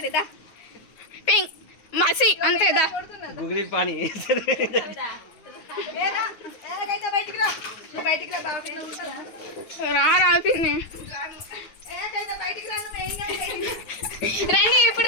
పెంక్ మసి అంతేదా గుగిలి పాని రా రాపింది రండి ఇప్పుడు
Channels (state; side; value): late; right; 9.4 ms